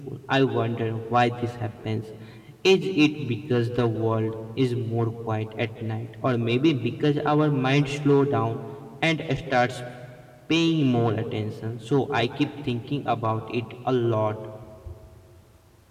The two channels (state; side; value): identical; both; correlation 1.00